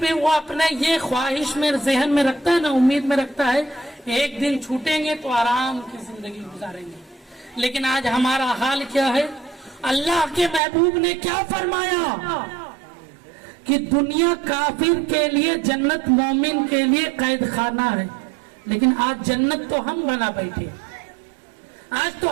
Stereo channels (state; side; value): drops out; left; at 10.6 s